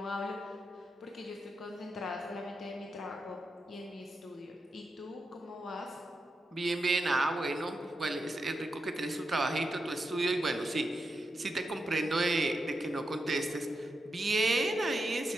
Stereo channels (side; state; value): both; normal; correlation 0.87